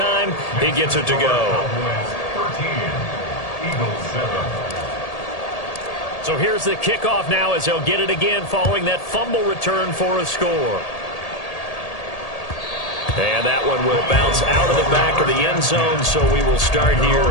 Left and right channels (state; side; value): late; right; 1.8 ms